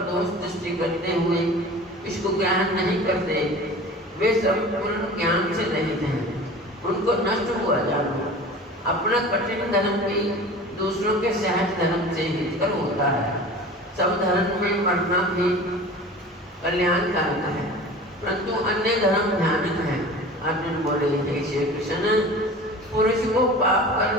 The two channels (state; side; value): normal; both; correlation 0.39